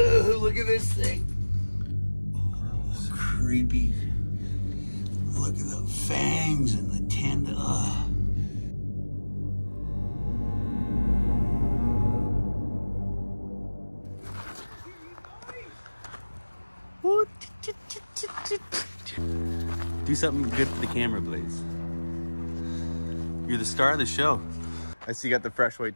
look at this thing. Oh, creepy. Look at the fangs and the tendon. Do something good for the camera, please. You're the star of the show. I see you got the fresh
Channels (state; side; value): inverted; both; correlation -1.00